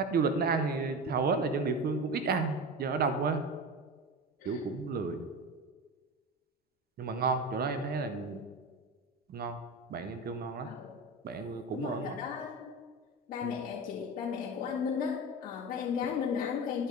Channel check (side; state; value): both; normal; correlation 0.26